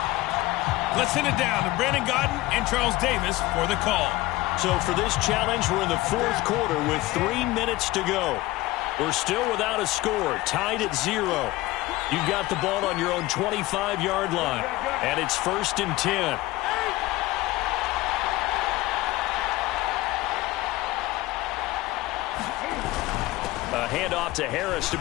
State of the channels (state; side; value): quieter; right; 18.8 dB